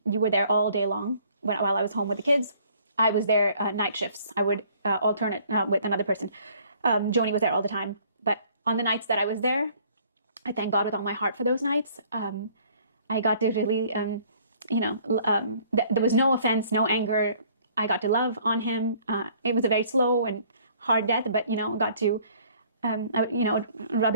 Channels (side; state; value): both; inverted; correlation -0.58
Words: You were there all day long while I was home with the kids. I was there night shifts. I would alternate with another person. Joni was there all the time. But on the nights that I was there, I thank God with all my heart for those nights. I got to really, there was no offense, no anger. I got to love on him. It was a very slow and hard death, but, got to, rub